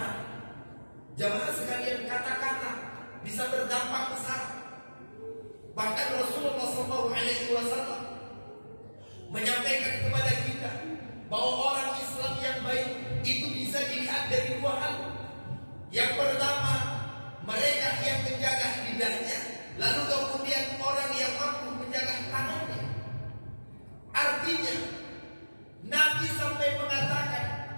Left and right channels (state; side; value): inverted; both; correlation -1.00